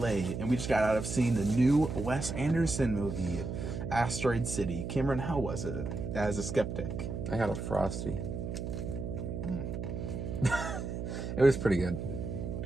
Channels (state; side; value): noise; right; hum, 5 dB below the sound